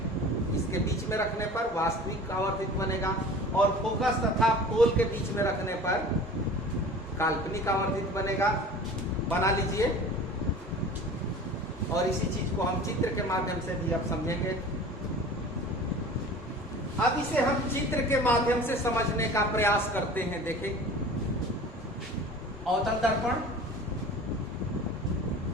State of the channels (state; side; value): normal; both; correlation 0.41